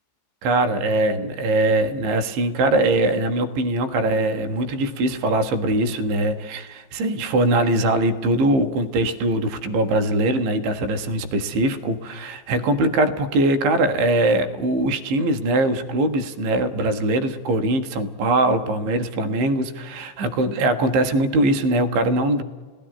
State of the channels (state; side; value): late; left; 15 ms